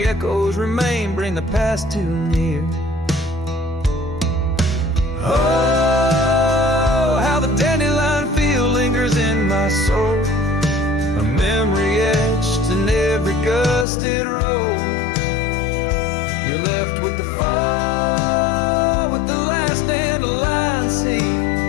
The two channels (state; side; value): drops out; right; at 13.9 s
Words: echoes remain, bring the past too near. Oh, how the dandelion field lingers in my soul, a memory etched in every gusted road. You're left with the fall, with the last dandelion seed